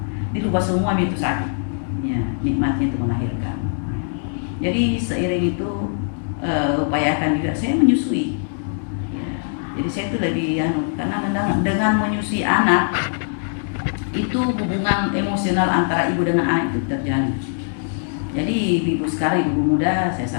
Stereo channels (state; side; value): silent; right; digital silence